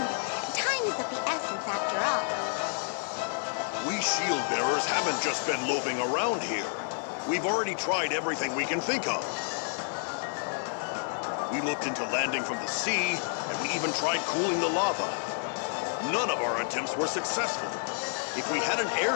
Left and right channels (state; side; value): silent; right; 58 dB below the other